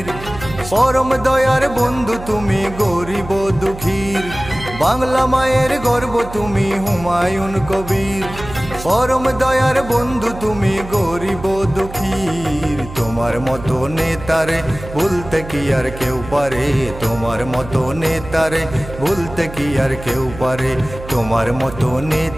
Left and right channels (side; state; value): right; noise; hum, 13 dB below the sound